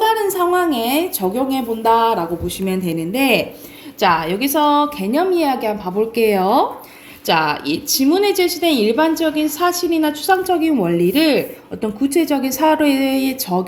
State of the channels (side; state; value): both; identical; correlation 1.00